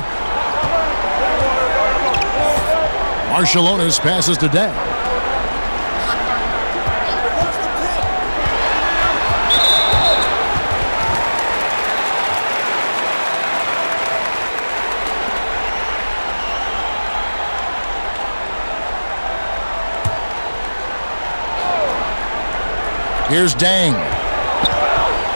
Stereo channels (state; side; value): inverted; both; correlation -1.00